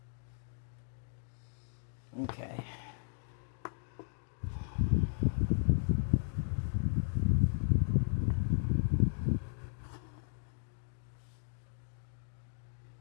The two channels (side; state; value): right; silent; digital silence